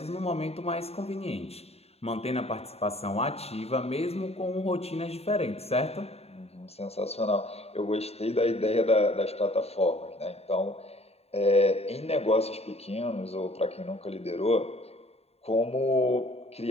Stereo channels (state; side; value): late; right; 0.30 ms